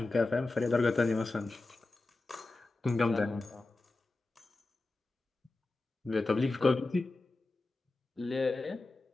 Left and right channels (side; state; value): right; quieter; 3.2 dB